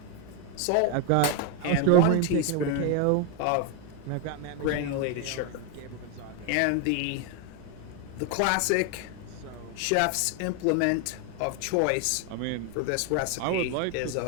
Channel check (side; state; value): both; different; correlation 0.01